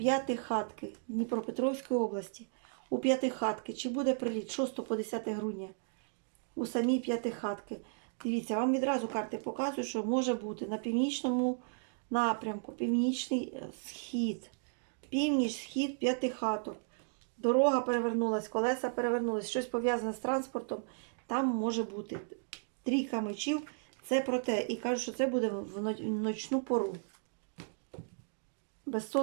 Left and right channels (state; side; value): silent; left; digital silence